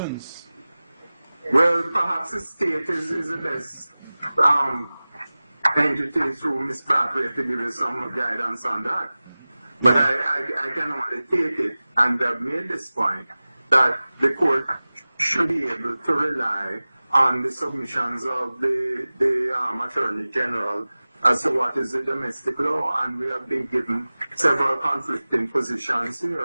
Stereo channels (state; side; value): inverted; both; correlation -0.98